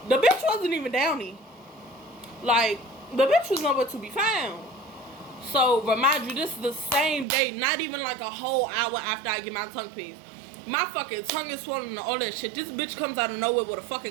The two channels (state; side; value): drops out; left; at 7.2 s